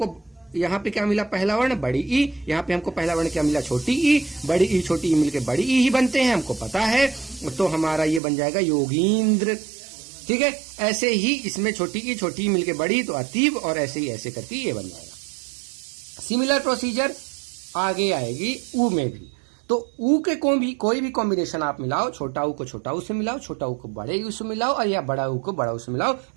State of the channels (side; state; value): left; drops out; at 8.2 s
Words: यहाँ पे क्या मिला, पहला वर्ण बड़ी ई, यहाँ पे हमको पहला वर्ण क्या मिला, छोटी ई। बड़ी ई छोटी ई मिलके बड़ी ई ही बनते हैं, हमको पता है, तो हमारा ये बन जाएगा योगींद्र। ठीक है, ऐसे ही इसमें छोटी ई मिलके बड़ी तो अतीब, और ऐसे ही ऐसे करके ये बन जाएगा। सिमिलर प्रोसीजर आगे आएगी ऊ में भी। तो ऊ के कोई भी कॉम्बिनेशन आप मिलाओ, छोटा ऊ को छोटा ऊ से मिलाओ, छोटा ऊ को बड़े ऊ से मिलाओ, और या बड़ा ऊ को बड़ा ऊ से मिलाओ,